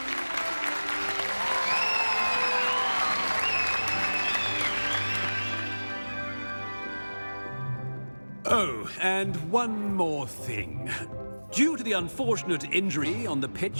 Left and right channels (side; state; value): both; inverted; correlation -1.00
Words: Oh, and one more thing. Due to the unfortunate injury on the